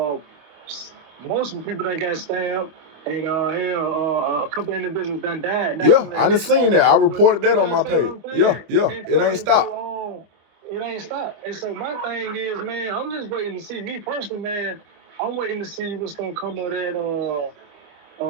most of the people that got stabbed, and a couple individuals done died. Yeah, I done seen that. I reported that on my page. Yeah, it ain't stopped. It ain't stopped. And so my thing is, man, I'm just waiting to see. Me personally, man, I'm waiting to see what's gonna come of that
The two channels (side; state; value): left; late; 25 ms